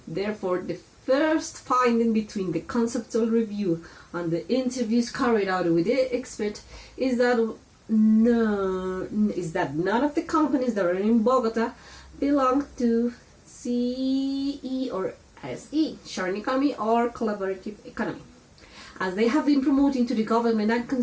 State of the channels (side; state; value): both; identical; correlation 1.00